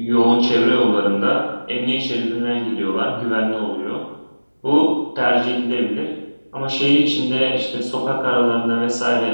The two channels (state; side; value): inverted; both; correlation -1.00